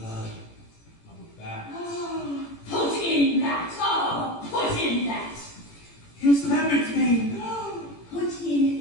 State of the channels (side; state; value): right; late; 18 ms